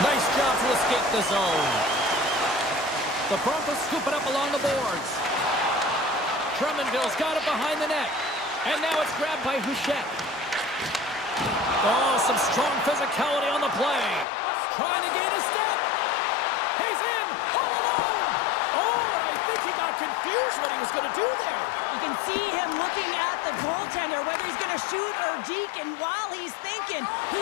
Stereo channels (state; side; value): drops out; right; at 14.2 s